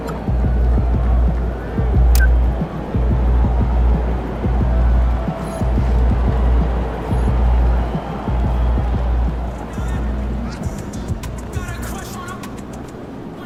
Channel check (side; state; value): both; identical; correlation 1.00